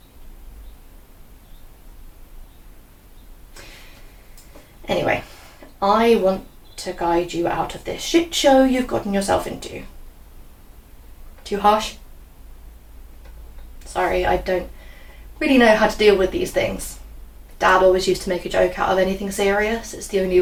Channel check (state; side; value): identical; both; correlation 1.00